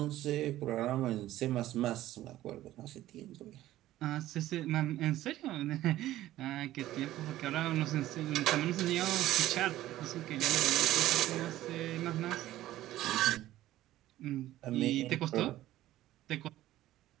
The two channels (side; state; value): left; quieter; 14.7 dB